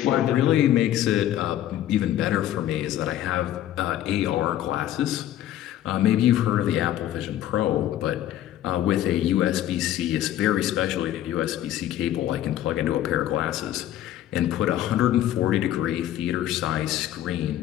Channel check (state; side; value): quieter; right; 12.5 dB